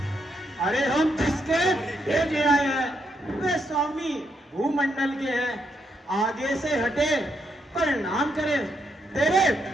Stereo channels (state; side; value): normal; both; correlation 0.78